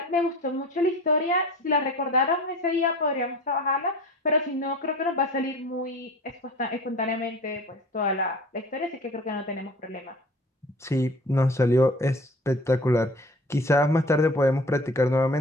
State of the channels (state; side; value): normal; both; correlation 0.42